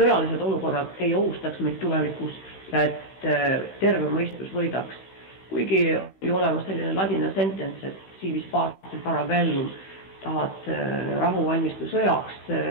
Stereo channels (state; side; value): late; right; 16 ms